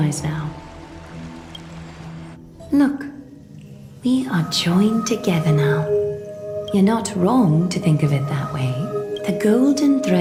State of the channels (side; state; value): both; identical; correlation 1.00